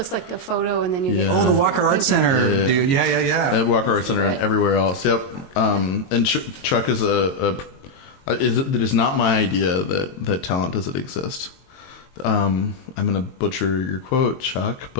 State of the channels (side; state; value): right; late; 22 ms